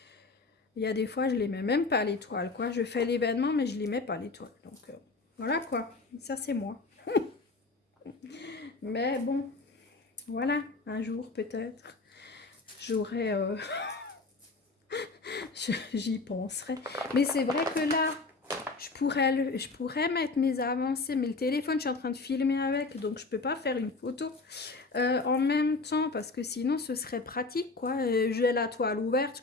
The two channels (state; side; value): quieter; right; 3.7 dB